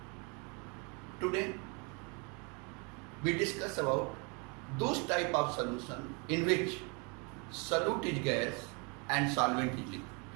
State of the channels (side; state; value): left; quieter; 32.5 dB